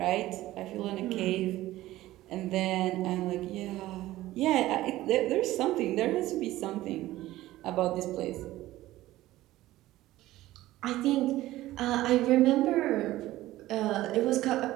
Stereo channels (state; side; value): quieter; left; 16.1 dB